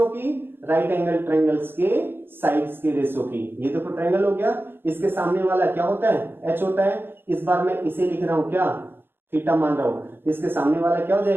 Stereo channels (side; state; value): left; late; 0.10 ms